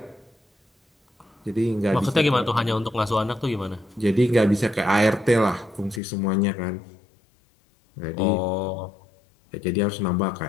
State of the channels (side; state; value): right; drops out; at 6.0 s